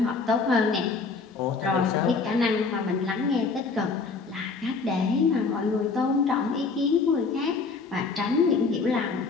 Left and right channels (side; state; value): right; quieter; 4.5 dB